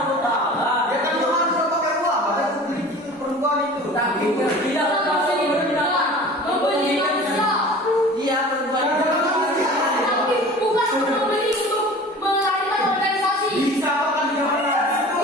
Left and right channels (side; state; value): both; normal; correlation 0.41